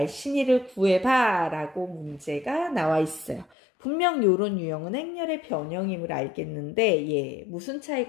구해봐 라고 문제가 나와 있어요. 분명 이런 유형은 행렬의 변형임을 알겠는데 무슨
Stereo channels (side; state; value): right; drops out; at 3.5 s